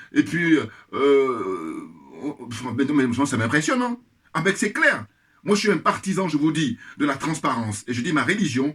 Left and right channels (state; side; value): identical; both; correlation 1.00